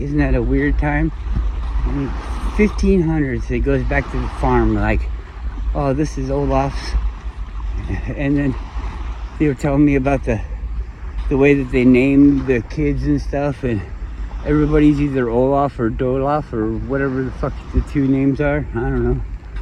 that a weird time? 1500s, it goes back to the farm, like, oh, this is Olaf's. And then they were telling me about the way that they named the kids and stuff, and everybody's either Olaf or Dolof or whatever the fuck the two names are. I don't know.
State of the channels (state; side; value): identical; both; correlation 1.00